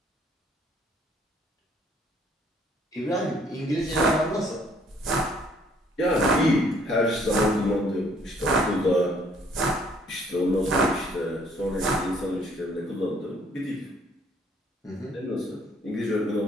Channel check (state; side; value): normal; both; correlation 0.62